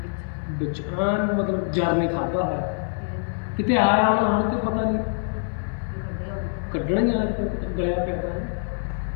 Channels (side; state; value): right; silent; 62 dB below the other